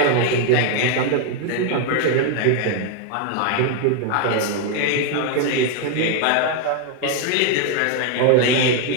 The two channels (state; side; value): different; both; correlation 0.01